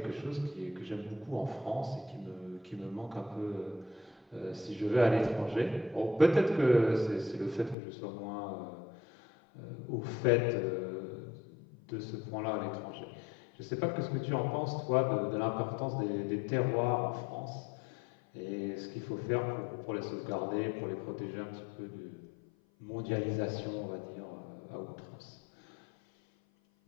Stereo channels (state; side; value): drops out; right; at 7.8 s